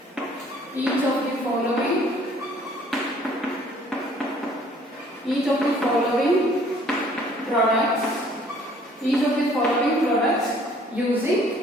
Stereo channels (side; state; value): both; normal; correlation 0.58